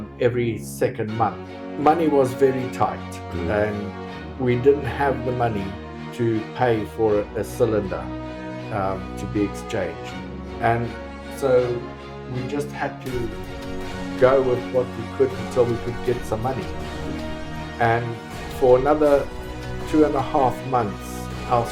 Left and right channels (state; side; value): identical; both; correlation 1.00